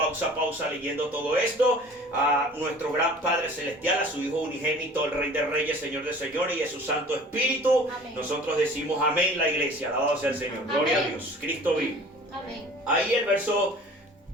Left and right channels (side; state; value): both; normal; correlation 0.46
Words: a pausa leyendo todo esto. A nuestro gran Padre Celestial, a su Hijo unigénito, el Rey de Reyes, Señor de Señores y a su Santo Espíritu. Amén. Nosotros decimos amén, la iglesia. Alabado sea el Señor. Amén. Gloria a Dios. Cristo vive. Amén. Ahí el verso